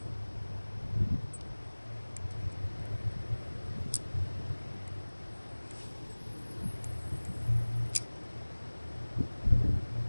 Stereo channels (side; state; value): both; inverted; correlation -1.00